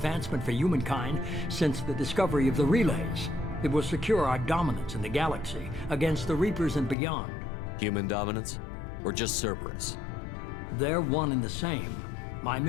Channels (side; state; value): right; drops out; at 7.0 s